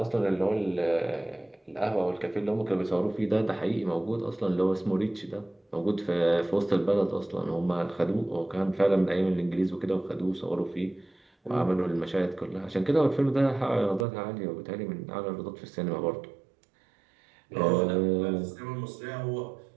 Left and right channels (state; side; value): drops out; left; at 14.1 s